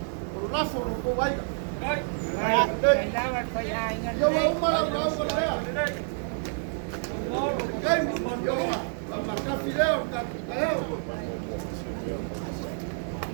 O la fo ko wai ka. Ai. Ai, vai para ai. Yo wa umara lau ko lea. Kai yo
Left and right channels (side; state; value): left; silent; 59 dB below the other